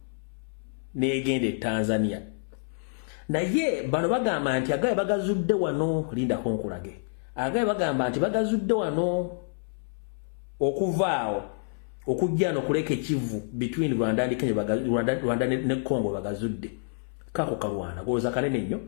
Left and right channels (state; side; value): silent; right; 59 dB below the other